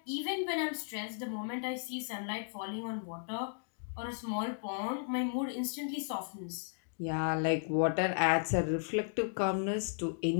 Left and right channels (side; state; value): right; silent; digital silence